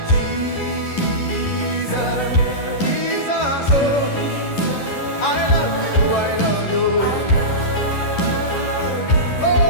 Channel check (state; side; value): late; right; 11 ms